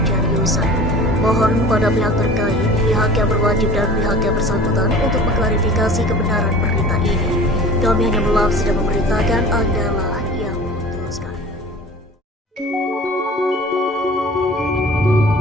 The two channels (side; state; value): both; normal; correlation 0.42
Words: Yusan. Mohon pada pihak terkait, pihak yang berwajib dan pihak yang bersangkutan untuk mengklarifikasi kebenaran berita ini. Kami hanya melansir dan memberitakan Anda lah